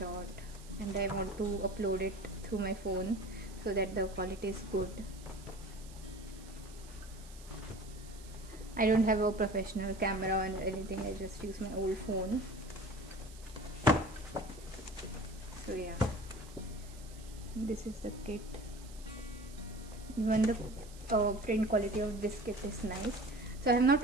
and I want to upload it through my phone so that the quality is good. I don't have a professional camera and anything, I just use my old phone. So yeah, this is the kit. Even the print quality of this kit is nice. So I have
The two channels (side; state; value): right; noise; hiss, 20 dB below the sound